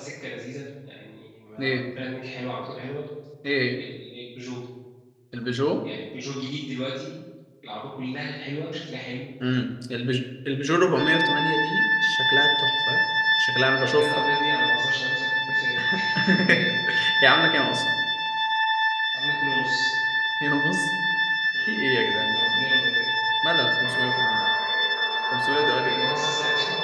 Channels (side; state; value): both; identical; correlation 1.00